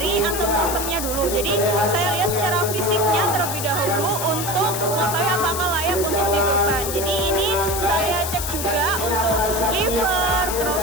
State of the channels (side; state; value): left; noise; hiss, 5 dB below the sound